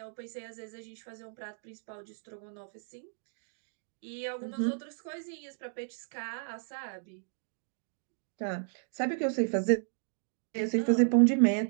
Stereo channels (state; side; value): silent; left; digital silence